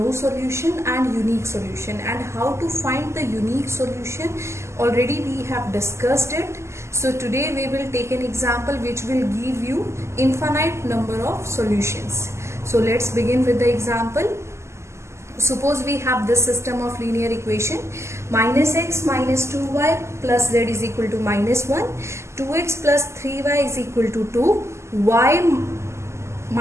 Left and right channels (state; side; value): late; left; 0.13 ms